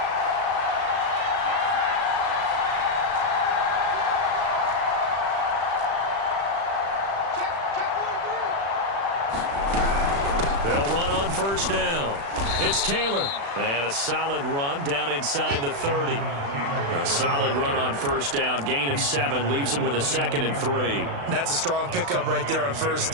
They'll run on first down. It's Taylor. And a solid run down inside the 30. A solid run on first down. Gain of 7 leaves him with a 2nd and 3. That's a strong pickup right there on first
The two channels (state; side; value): late; left; 36 ms